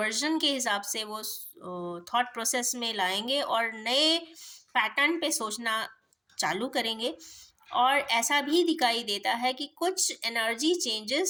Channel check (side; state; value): both; identical; correlation 1.00